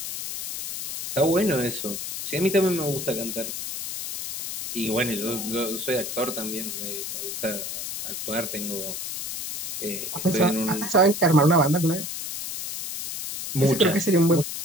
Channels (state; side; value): noise; left; hiss, 6 dB below the sound